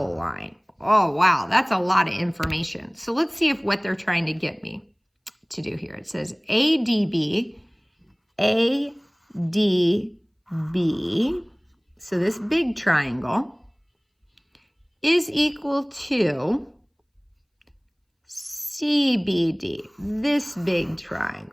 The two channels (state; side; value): identical; both; correlation 1.00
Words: line. Oh, wow, that's a lot of information. So let's see if what they're trying to get me to do here. It says ADB, ADB, so this big triangle, is equal to CBD, this big